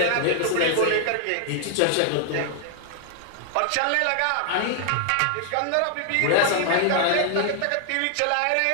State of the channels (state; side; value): different; both; correlation 0.00